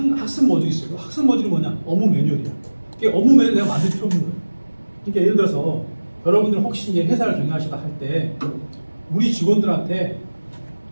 모듈이 있어요. 그 학습 모듈이 뭐냐? 업무 매뉴얼이야. 그게 업무 매뉴얼 내가 만들 필요 없는 거예요. 그러니까 예를 들어서 여러분들 혹시 이제 회사를 경영하시다 할 때 우리 직원들한테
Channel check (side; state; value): both; inverted; correlation -1.00